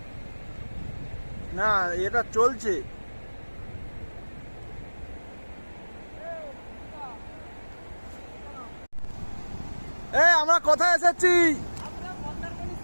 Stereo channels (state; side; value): inverted; both; correlation -1.00